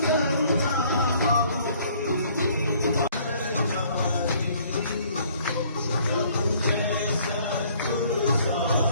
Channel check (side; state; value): both; inverted; correlation -0.60